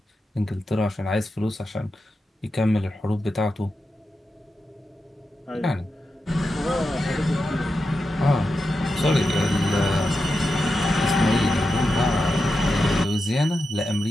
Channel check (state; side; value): normal; both; correlation 0.89